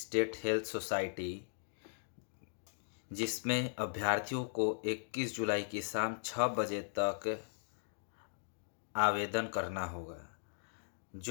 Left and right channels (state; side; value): silent; right; digital silence